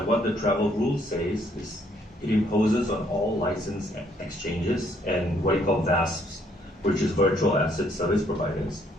what the travel rule says is it imposes on all licensed exchanges and what you call VASPs, which is virtual asset service providers.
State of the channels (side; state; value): both; normal; correlation 0.67